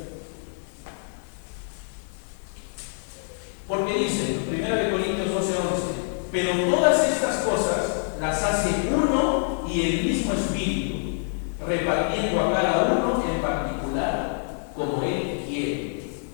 Porque dice, 1 Corintios 12:11, pero todas estas cosas las hace uno y el mismo Espíritu, repartiendo a cada uno en particular como Él quiere.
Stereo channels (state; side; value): silent; right; 58 dB below the other